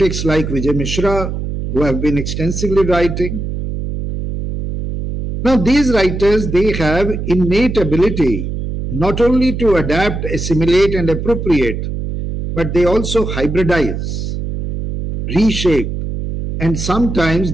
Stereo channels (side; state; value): right; noise; hum, 4 dB below the sound